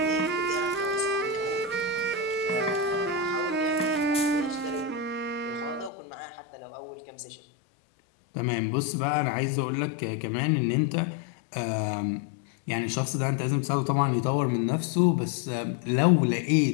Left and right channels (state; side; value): drops out; right; at 5.9 s